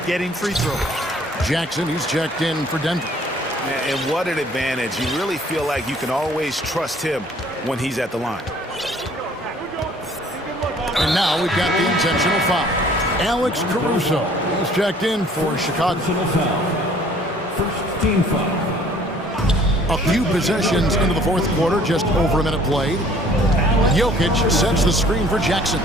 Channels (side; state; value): both; normal; correlation 0.56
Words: getting free throws. Jackson, he's checked in for Denver. And what an advantage. You really feel like you can always trust him when he's at the line. And now we've got the intentional foul. Alex Caruso, he's checked in for Chicago. First team foul. A few possessions into the fourth quarter, just over a minute played. Jokic sets the screen for Jackson.